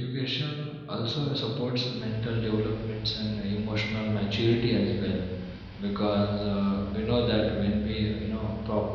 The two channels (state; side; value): identical; both; correlation 1.00